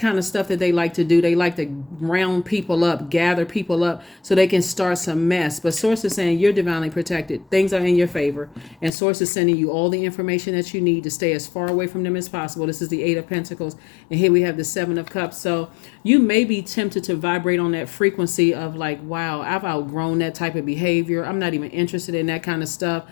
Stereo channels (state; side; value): drops out; right; at 8.9 s